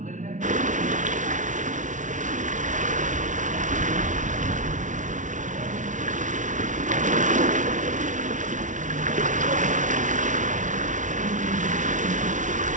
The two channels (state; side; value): late; left; 0.37 ms